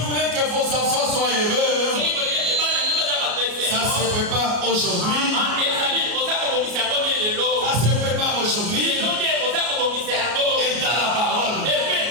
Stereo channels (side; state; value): left; late; 33 ms